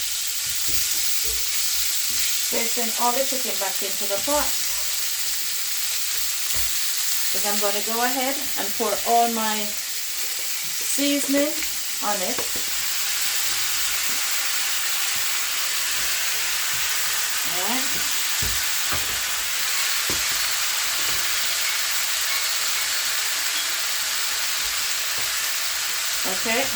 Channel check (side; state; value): both; identical; correlation 1.00